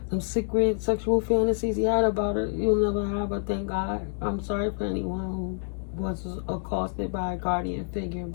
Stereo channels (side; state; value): right; silent; 60 dB below the other